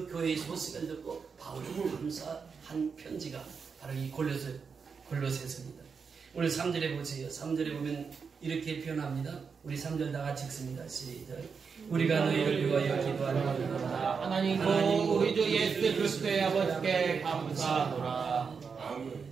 교회의 소식을 듣고 바울이 감사한 편지가 바로 이 골로새서입니다. 오늘 3절에 보세요. 3절에 보면 이렇게 표현합니다. 우리 3절 다 같이 읽습니다. 시작. 우리가 너희를 위하여 기도하노라. 하나님고 우리 주 예수 그리스도의 아버지께 감사하노라.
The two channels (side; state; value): left; quieter; 5.7 dB